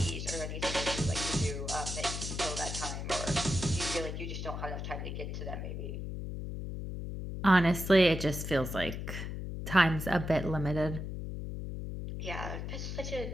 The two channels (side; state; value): left; noise; hum, 5 dB below the sound